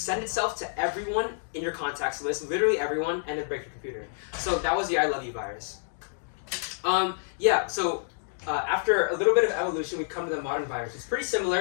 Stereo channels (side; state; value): right; silent; digital silence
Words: itself to everyone in your contacts list, literally everyone, and then break your computer. So that was the I Love You virus. Yeah, so after a little bit of evolution, we come to the modern virus. It's pretty